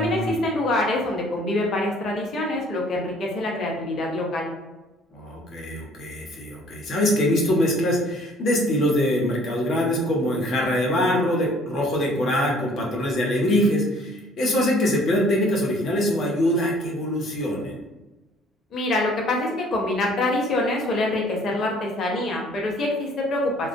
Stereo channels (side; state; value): both; normal; correlation 0.57